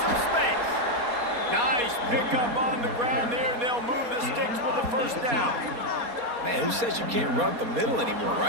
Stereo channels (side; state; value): left; late; 4.2 ms